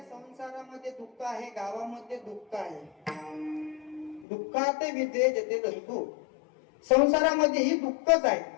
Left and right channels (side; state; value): right; drops out; at 4.2 s